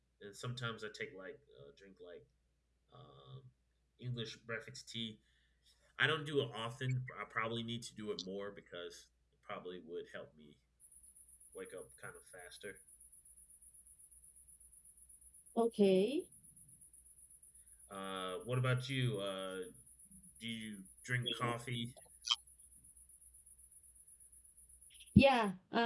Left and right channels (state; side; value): identical; both; correlation 1.00